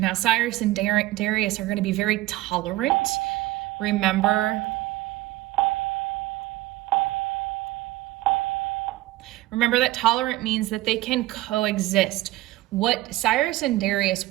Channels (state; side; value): quieter; left; 17.2 dB